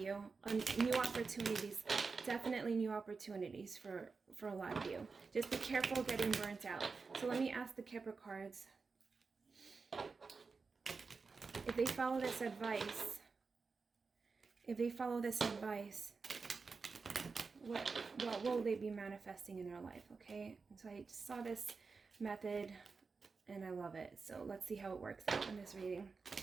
New opportunities, definitely new opportunities for a lot of you. Just be careful getting burnt out. So let me ask the Kipper cards. If they follow this advice, what will they be manifesting in their life? Okay, and so I just saw this method and I love it. So let's see how it works out in this reading.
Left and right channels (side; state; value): left; quieter; 4.6 dB